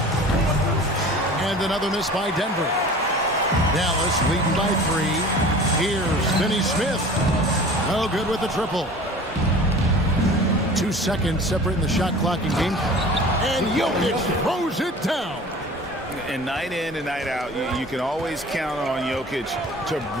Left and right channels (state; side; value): normal; both; correlation 0.42